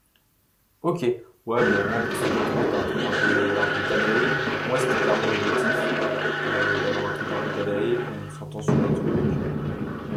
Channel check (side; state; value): both; identical; correlation 1.00